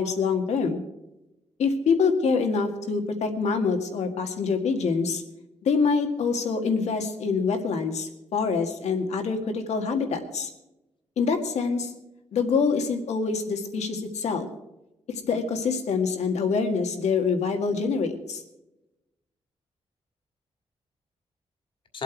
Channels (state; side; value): quieter; right; 4.6 dB